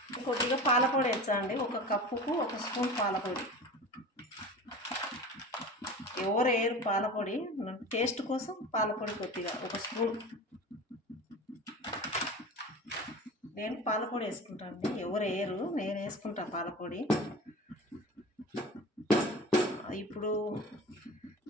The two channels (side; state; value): both; normal; correlation 0.34